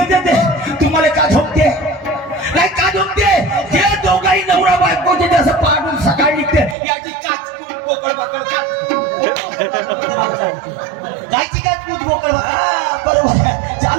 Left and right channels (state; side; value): drops out; left; at 6.8 s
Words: येते तुम्हाला का झोपते नाही का झोपते हे दोघाही नवरा बायकोचे जसं पाठून सकाळी निघते याची काच बोकड बाकड कायची काय तू मोकळ बरोबर आहे